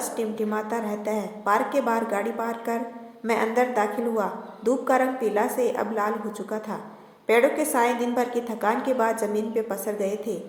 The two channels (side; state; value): both; identical; correlation 1.00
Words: टिमटिमाता रहता है। पार्क के बाहर गाड़ी पार्क कर मैं अंदर दाखिल हुआ। धूप का रंग पीला से अब लाल हो चुका था। पेड़ों के साए दिन भर की थकान के बाद जमीन पे पसर गए थे।